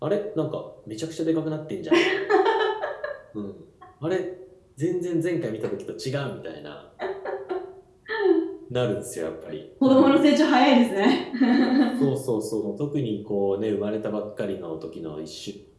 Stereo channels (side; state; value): both; identical; correlation 1.00